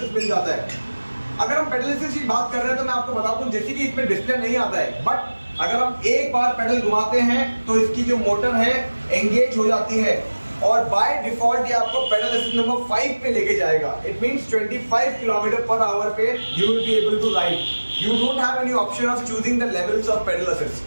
मिल जाता है. अगर हम पेडल असिस्ट की बात कर रहे हैं तो मैं आपको बता दूं जैसे कि इसमें डिस्प्ले नहीं आता है, बट अगर हम एक बार पेडल घुमाते हैं तो इसकी जो मोटर है एंगेज हो जाती है और बाय डिफॉल्ट ये आपको पेडल असिस्ट नंबर 5 पे लेके जाएगा. It means 25 kilometre per hour पे you will be able to ride. You don't have any option of choosing the levels of pedal assist.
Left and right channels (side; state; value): both; inverted; correlation -1.00